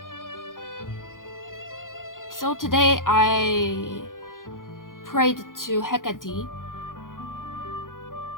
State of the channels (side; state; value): right; late; 0.89 ms